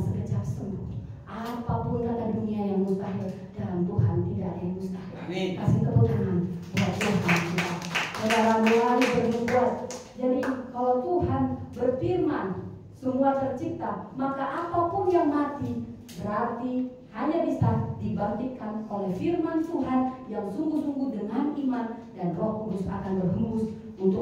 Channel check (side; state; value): both; identical; correlation 1.00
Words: sembuh. Apapun kata dunia yang mustahil, dalam Tuhan tidak ada yang mustahil. Amin. Kasih tepuk tangan buat Tuhan kita. Saudara mulai berbuat. Jadi kalau Tuhan berfirman semua tercipta, maka apapun yang mati berarti hanya bisa dibangkitkan oleh firman Tuhan yang sungguh-sungguh dengan iman, dan Roh Kudus akan berhembus